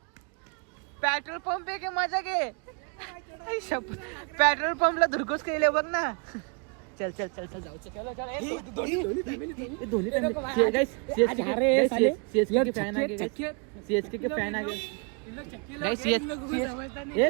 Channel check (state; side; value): quieter; left; 33.6 dB